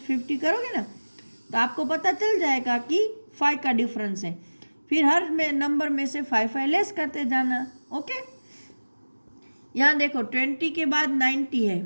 50 करोगे ना तो आपको पता चल जाएगा कि 5 का डिफरेंस है। फिर हर में नंबर में से 5 लेस करते जाना। ओके, यहाँ देखो 20 के बाद 90 है,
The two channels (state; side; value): inverted; both; correlation -1.00